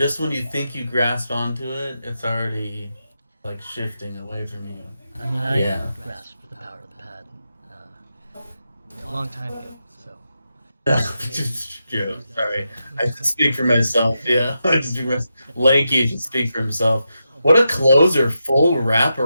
when you think you grasp onto it, it's already like shifting away from you. I mean, I Yeah. grasped the power of the pad a long time ago, so. Yeah, sorry. I can speak for myself. Yeah, I just speak for myself. Lanky should speak for himself. What a closer, full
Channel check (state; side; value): inverted; both; correlation -0.87